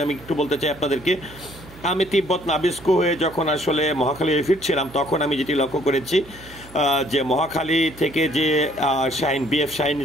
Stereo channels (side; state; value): right; noise; hum, 20 dB below the sound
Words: আমি একটু বলতে চাই আপনাদেরকে। আমি তিব্বত নাবিস্কো হয়ে যখন আসলে মহাখালী ফিরছিলাম, তখন আমি যেটি লক্ষ্য করেছি যে মহাখালী থেকে যে বিএফ শাহিন